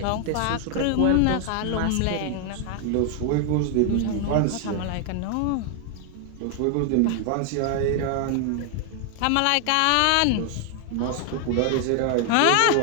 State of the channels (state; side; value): different; both; correlation 0.00